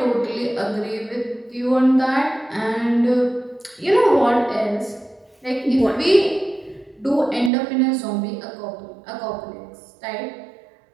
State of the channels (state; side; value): drops out; left; at 7.5 s